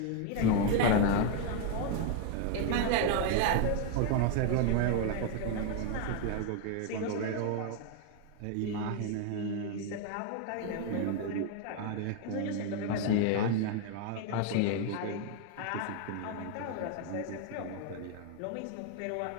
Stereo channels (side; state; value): both; different; correlation 0.01